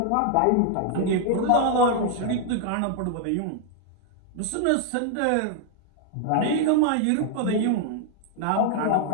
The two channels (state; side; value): different; both; correlation 0.00